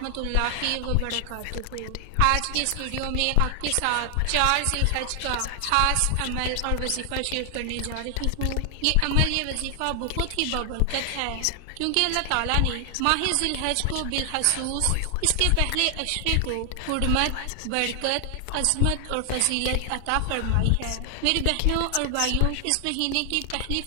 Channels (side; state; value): both; different; correlation 0.00